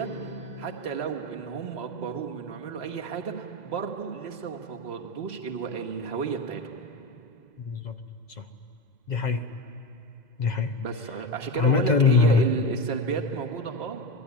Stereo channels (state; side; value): late; right; 2.0 ms